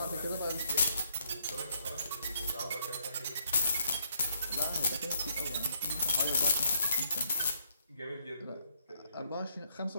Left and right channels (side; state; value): both; inverted; correlation -0.71